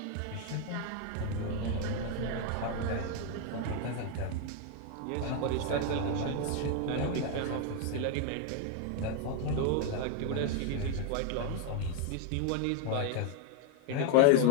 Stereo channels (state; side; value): different; both; correlation 0.00